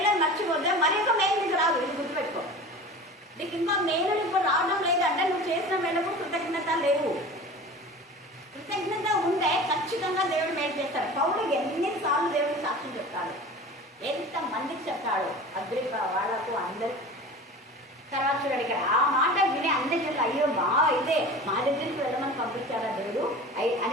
మర్చిపోతే మరి ఒక మేలు నీకు రాదు. ఇది గుర్తుపెట్టుకో. నీకు ఇంకా మేలు ఇప్పుడు రావడం లేదంటే నువ్వు చేసిన మేళకు కృతజ్ఞత లేవు. కృతజ్ఞత ఉంటే ఖచ్చితంగా దేవుడు మేలు చేస్తాడు. పౌలు ఎన్నిసార్లు దేవుడికి సాక్ష్యం చెప్తాడు, ఎంత మందికి చెప్తాడు, అగ్రిప వాళ్ళకు అందరికి. తర్వాత చూడండి ఇక్కడ ఆ మాట విని అందరి జనులు అయ్యో అయితే మా దగ్గరికి వెళ్ళమని పంపించారా దేవుడు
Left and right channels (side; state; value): both; normal; correlation 0.37